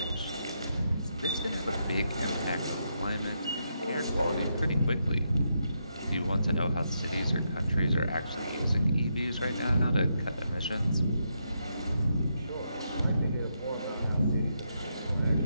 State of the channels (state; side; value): inverted; both; correlation -0.81